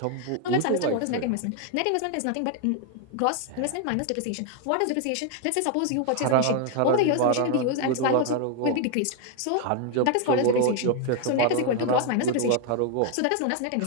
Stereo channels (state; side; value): different; both; correlation 0.00